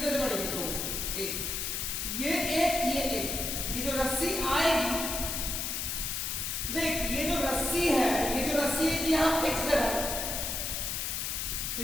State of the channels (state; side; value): noise; left; hiss, 2 dB below the sound